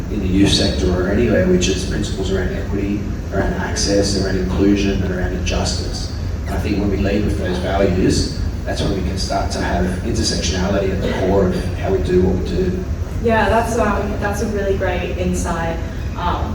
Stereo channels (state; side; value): identical; both; correlation 1.00